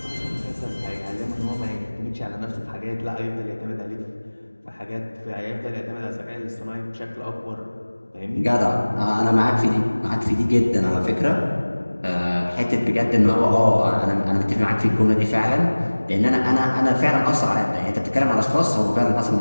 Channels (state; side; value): inverted; both; correlation -1.00